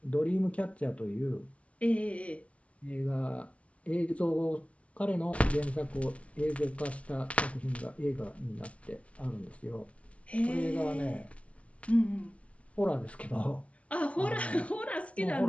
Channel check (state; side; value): late; right; 0.063 ms